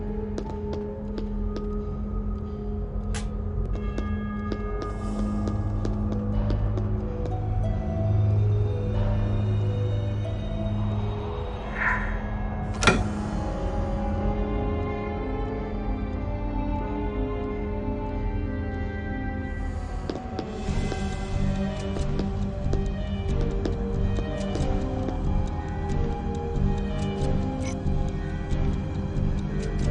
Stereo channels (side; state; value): both; identical; correlation 1.00